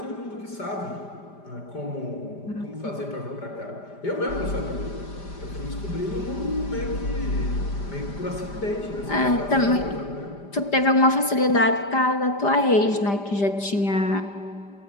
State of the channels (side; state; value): right; late; 5.0 ms